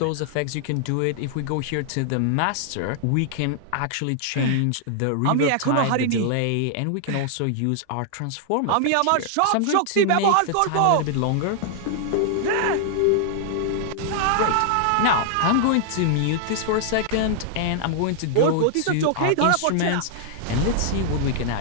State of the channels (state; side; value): different; both; correlation -0.01